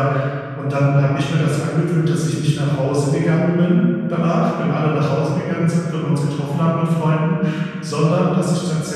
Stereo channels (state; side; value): identical; both; correlation 1.00